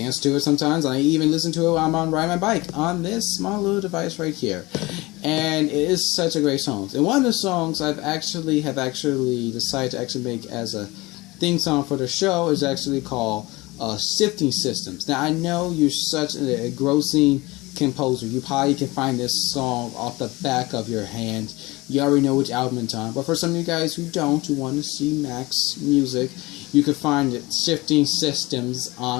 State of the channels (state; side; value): quieter; right; 21.9 dB